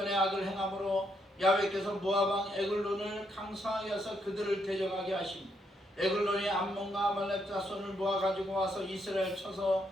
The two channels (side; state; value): both; normal; correlation 0.76